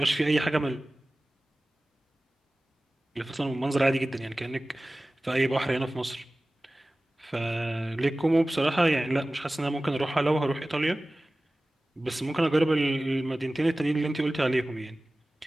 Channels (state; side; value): normal; both; correlation 0.97